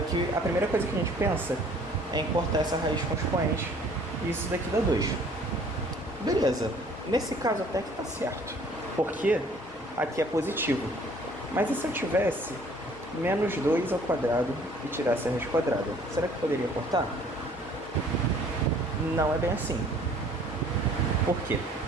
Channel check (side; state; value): both; normal; correlation 0.56